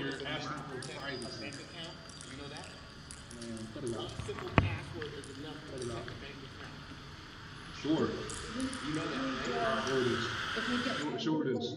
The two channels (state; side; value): identical; both; correlation 1.00